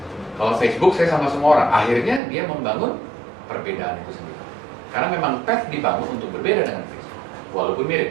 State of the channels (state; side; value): drops out; left; at 2.2 s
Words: kalau Facebook saya sama semua orang. Akhirnya dia membangun perbedaan itu sendiri. Karena memang Pet dibangun untuk berbeda dengan Facebook, walaupun